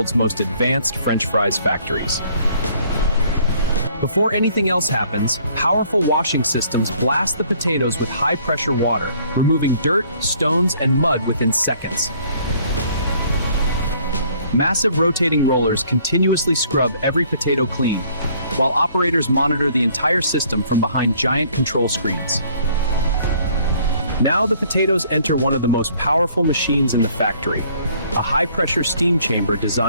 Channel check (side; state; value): both; inverted; correlation -0.60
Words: most advanced French fries factories. Before anything else happens, powerful washing systems blast the potatoes with high-pressure water, removing dirt, stones, and mud within seconds. Massive rotating rollers continuously scrub every potato clean, while operators monitor the entire system from behind giant control screens. Now the potatoes enter one of the most powerful machines in the factory, a high-pressure steam chamber